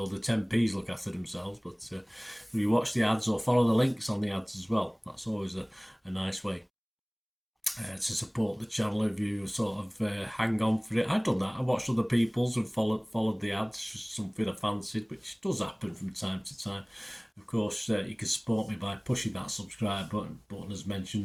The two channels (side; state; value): both; identical; correlation 1.00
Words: the 10p's look after themselves. But if you watch the ads or follow the links on the ads as well, that's always a nice way to support the channel. If you sort of hang on for it, I've done that. I watched other people's and followed the ads, something I fancied, which does happen from time to time. Of course, you can support me by pushing that subscribe button as